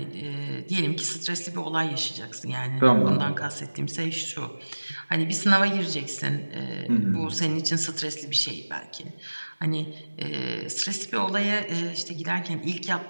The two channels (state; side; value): inverted; both; correlation -1.00